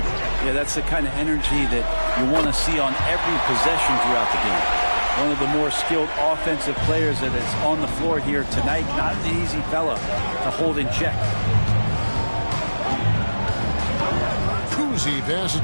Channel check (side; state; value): both; inverted; correlation -1.00